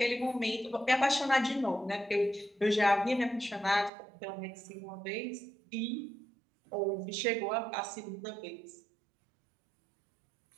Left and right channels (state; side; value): drops out; left; at 3.9 s